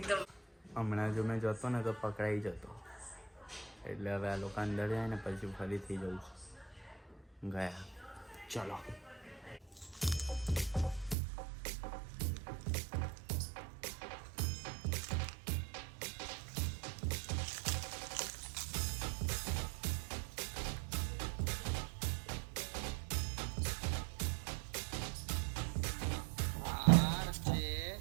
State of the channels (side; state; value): left; drops out; at 11.2 s